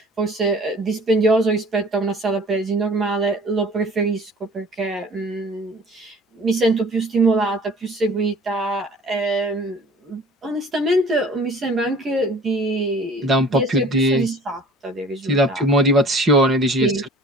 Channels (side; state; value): both; normal; correlation 0.47